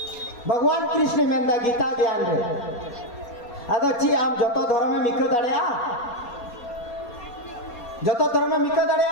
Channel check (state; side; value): late; right; 4.2 ms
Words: भगवान कृष्ण मेंदा गीता ज्ञान रे अदो ची आम जतो धर्म में मिको दाड़िया जतो धर्म में मिको दाड़िया